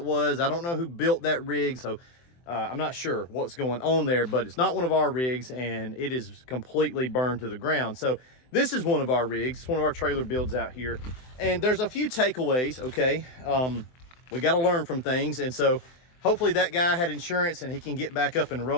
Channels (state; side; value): late; right; 23 ms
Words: was. I don't know who built that rig, so I'm not sure what's going on there, but it's not one of our rigs, and it is completely burned to the ground. So this is one of our rigs. It's one of our trailer builds out here, and there's a few takeaways, okay? We got to learn from things, and so hopefully that guy had insurance and he can get back up and